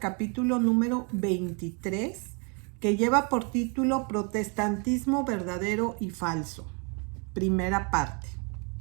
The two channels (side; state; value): left; quieter; 34.9 dB